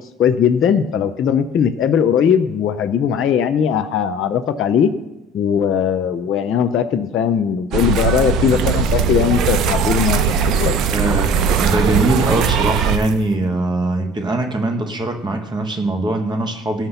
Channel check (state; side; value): normal; both; correlation 0.46